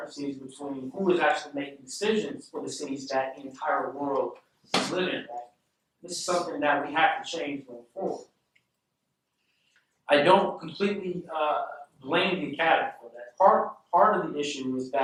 between who is actually making decisions for the cities that the entire world is living in. Right? This is something that we have to change going forward. I don't completely blame the academy for that. Part of the issue is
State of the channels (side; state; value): both; identical; correlation 1.00